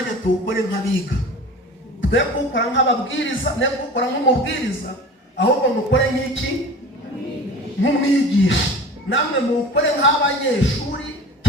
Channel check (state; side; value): normal; both; correlation 0.38